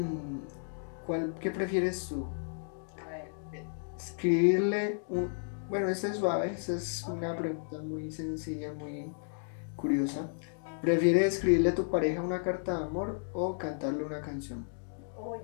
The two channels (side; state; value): right; silent; digital silence